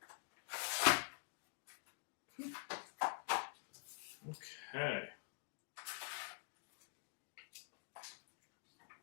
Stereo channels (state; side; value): silent; right; digital silence